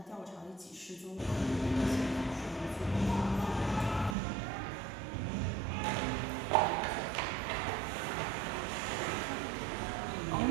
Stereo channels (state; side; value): drops out; left; at 4.2 s